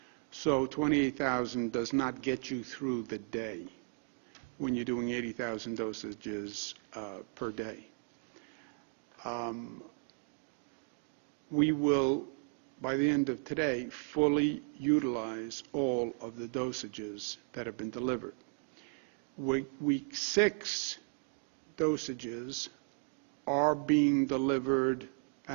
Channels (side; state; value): left; quieter; 39.5 dB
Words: So 28,000 does not get you through the day when you're doing 80,000 dosages per day. We will, by the end of today, fully utilize all of the dosages that have been delivered. Week 6 dosages are being delivered